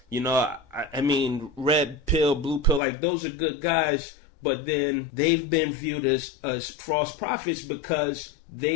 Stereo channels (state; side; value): drops out; right; at 2.8 s